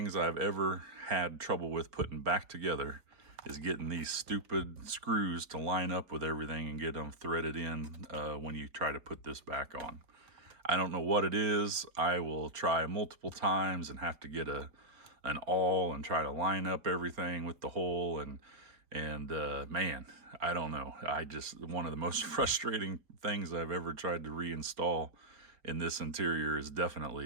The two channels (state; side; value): late; left; 4.4 ms